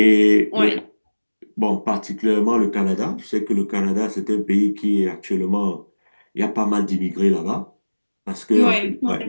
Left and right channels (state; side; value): inverted; both; correlation -1.00